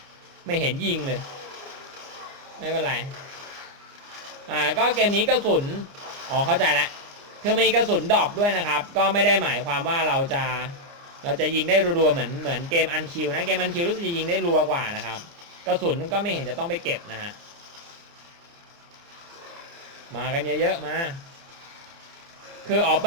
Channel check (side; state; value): left; late; 29 ms